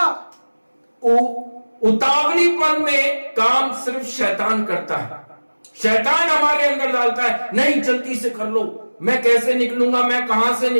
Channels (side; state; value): both; inverted; correlation -1.00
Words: उतावलीपन में काम सिर्फ शैतान करता है। शैतान हमारे अंदर डालता है, नहीं जल्दी से कर लो, मैं कैसे निकलूंगा, मैं कहां से